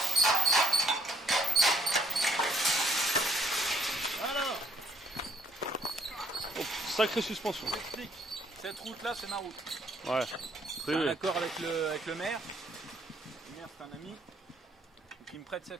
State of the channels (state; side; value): normal; both; correlation 0.66